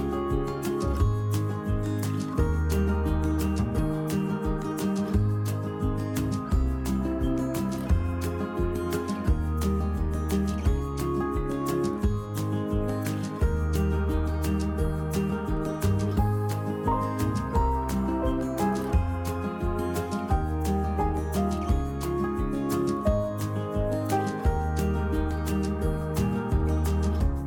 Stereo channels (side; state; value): both; identical; correlation 1.00